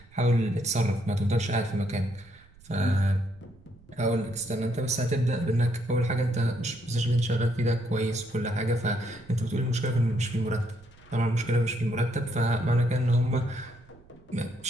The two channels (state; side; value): noise; right; rumble, 26 dB below the sound